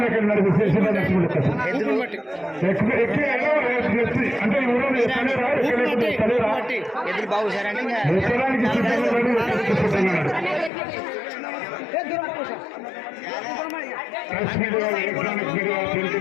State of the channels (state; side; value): drops out; right; at 10.7 s